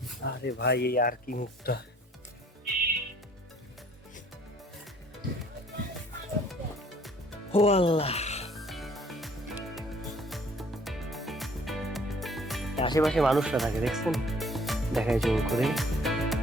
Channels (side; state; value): both; normal; correlation 0.58